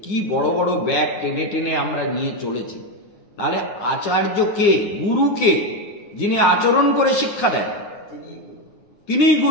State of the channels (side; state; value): right; late; 9.6 ms